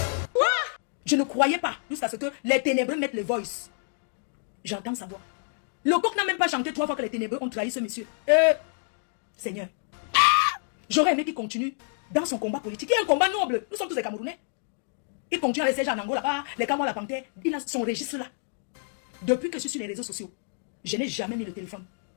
Je ne croyais pas jusqu'à ce que les ténébreux mettent le voice. J'entends sa voix. Le coq n'a même pas chanté 3 fois que les ténébreux ont trahi ce monsieur. Seigneur, j'aurais aimé qu'il continue dans son combat politique. Il y a un combat noble. Nous sommes tous des Camerounais. Il continue avec ses gens en Angola là-bas, les Camerounais, la Panthère. Il a son registre là. Depuis que je suis sur les réseaux sociaux, je n'ai jamais mis le téléphone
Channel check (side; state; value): right; silent; 59 dB below the other